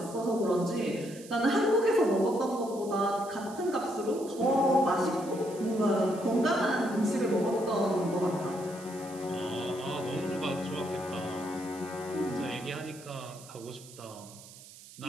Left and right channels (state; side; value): noise; right; hiss, 18 dB below the sound